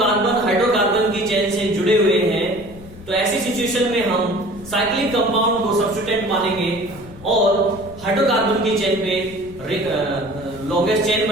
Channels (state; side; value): noise; left; rumble, 18 dB below the sound